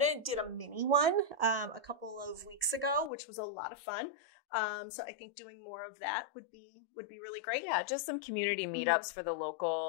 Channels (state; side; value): drops out; right; at 3.1 s